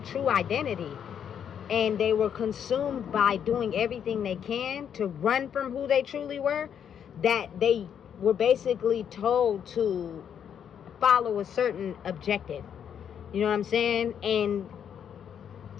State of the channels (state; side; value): quieter; right; 8.5 dB